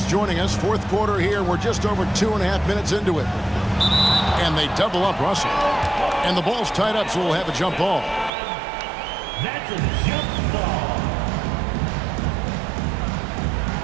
joining us, fourth quarter here. We're just over 2.5 minutes into it. And they double up Russell. And the ball's tied up, so we'll have a jump ball. That's a jump ball.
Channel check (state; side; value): drops out; left; at 8.3 s